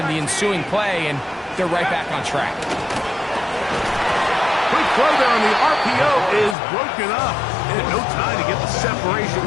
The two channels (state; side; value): drops out; right; at 6.6 s